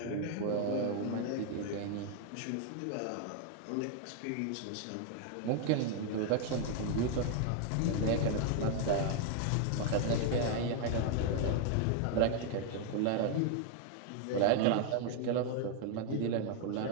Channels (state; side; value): different; both; correlation 0.00